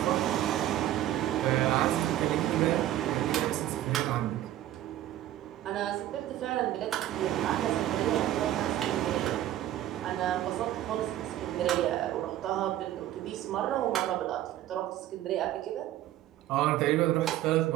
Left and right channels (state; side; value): quieter; left; 13.2 dB